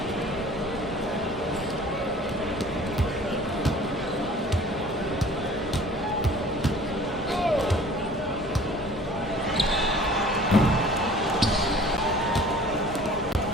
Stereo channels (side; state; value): both; normal; correlation 0.48